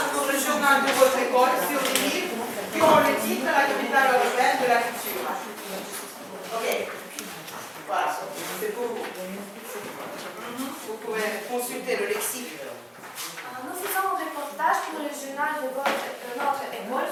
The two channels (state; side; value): identical; both; correlation 1.00